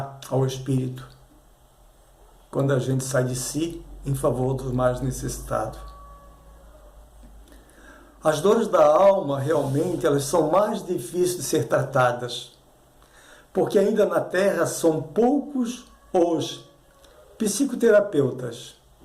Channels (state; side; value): identical; both; correlation 1.00